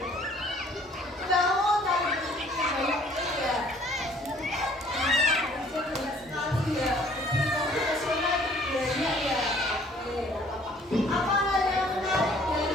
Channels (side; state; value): both; normal; correlation 0.57